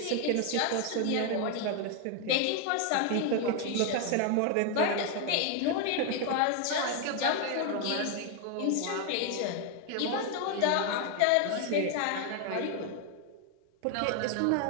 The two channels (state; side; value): different; both; correlation 0.01